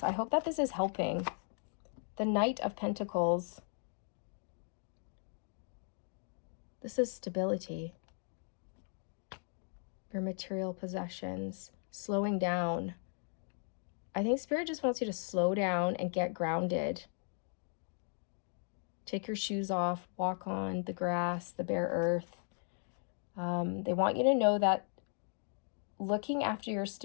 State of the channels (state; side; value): silent; right; 53 dB below the other